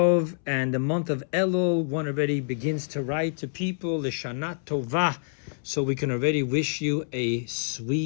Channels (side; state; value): right; silent; 60 dB below the other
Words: and the month of Elul, one already begins to write to people, L'Shana Tovah. So we can already wish you a